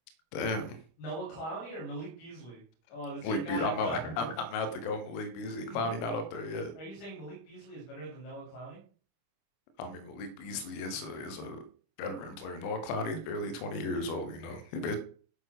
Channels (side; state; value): right; late; 25 ms